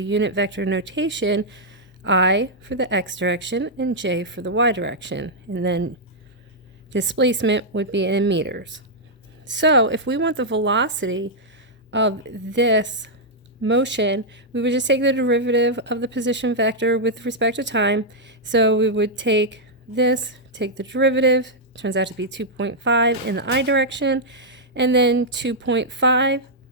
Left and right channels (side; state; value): both; normal; correlation -0.06